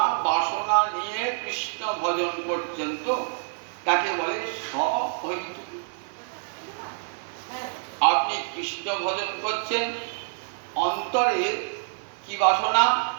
বাসনা নিয়ে কৃষ্ণ ভজন করছেন তো তাকে বলে সহৈতুকী। আপনি কৃষ্ণ ভজন করছেন, অন্তরে কি বাসনা?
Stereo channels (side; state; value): left; silent; digital silence